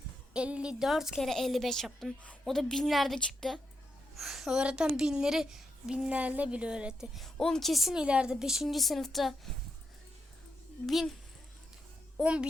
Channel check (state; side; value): normal; both; correlation 0.84